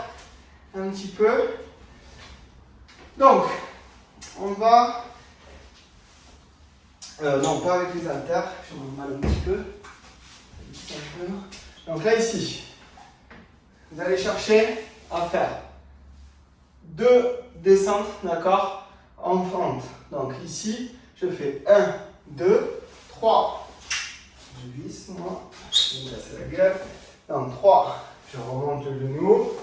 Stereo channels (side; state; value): both; identical; correlation 1.00